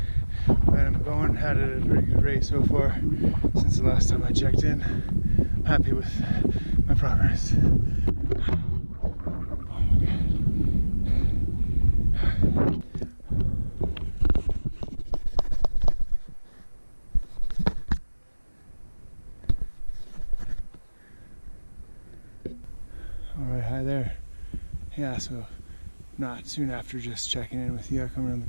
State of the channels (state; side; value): inverted; both; correlation -1.00